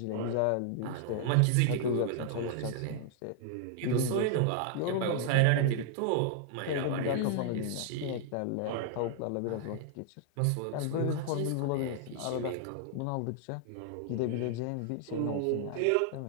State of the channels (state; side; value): different; both; correlation -0.01